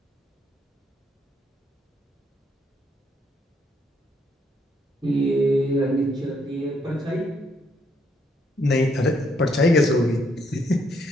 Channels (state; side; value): normal; both; correlation 0.72